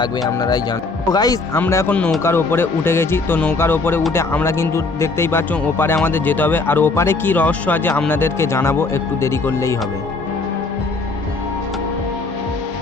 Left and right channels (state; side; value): quieter; right; 3.7 dB